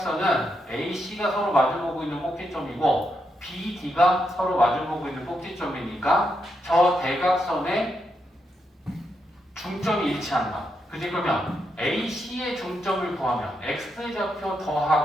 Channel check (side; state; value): both; normal; correlation 0.82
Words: A, C가 서로 마주보고 있는 꼭지점이고 B, D가 서로 마주보고 있는 꼭지점이니까 저 대각선의 중점이 일치한다. 그지? 그러면 AC의 중점을 구하면 X좌표